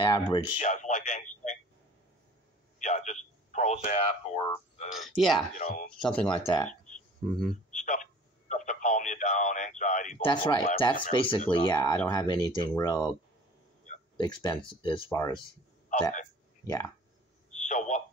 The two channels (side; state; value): both; normal; correlation 0.47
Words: Yeah, it's like anxiety. Yeah, just Prozac or something like that. Mm-hmm. Stuff to calm you down, anxiety. That's right. That's basically I don't have anything real expensive as far as that. Yeah. So